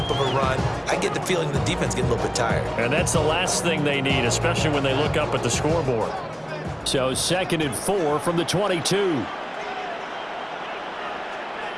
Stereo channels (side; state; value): both; identical; correlation 1.00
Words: of a run, I get the feeling the defense getting a little bit tired. And that's the last thing they need, especially when they look up at the scoreboard. So 2nd and 4 from the 22.